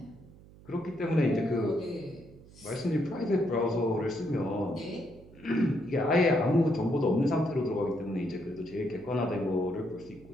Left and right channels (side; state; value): right; noise; hum, 22 dB below the sound